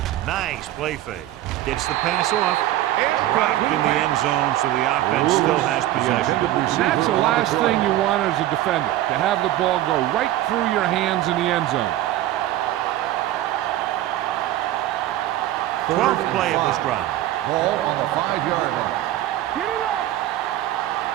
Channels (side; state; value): left; quieter; 14.1 dB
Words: Nice play fake. Gets the pass off. Product in the end zone, so the offense still has possession. That's the last thing you want as a defender, to have the ball go right through your hands in the end zone. 12th play of this drive. Ball on the 5-yard line. Get it up.